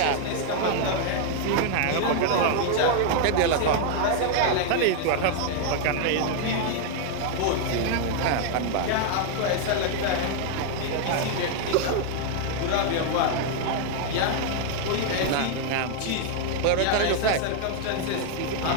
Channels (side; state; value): both; different; correlation 0.00